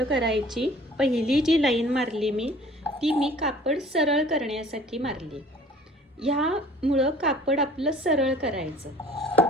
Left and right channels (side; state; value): both; normal; correlation 0.50